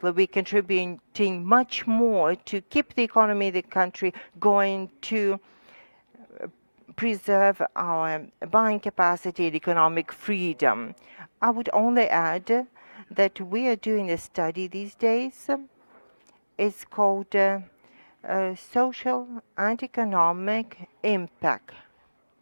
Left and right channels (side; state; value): both; inverted; correlation -1.00